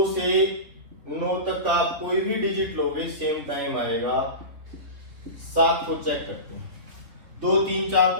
से 9 तक का आप कोई भी डिजिट लोगे सेम टाइम आएगा। 7 को चेक करते हैं, 2 3 4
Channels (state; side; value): late; left; 3.2 ms